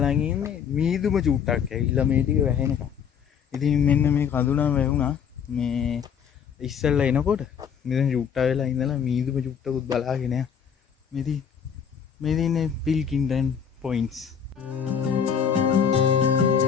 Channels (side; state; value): right; quieter; 7.5 dB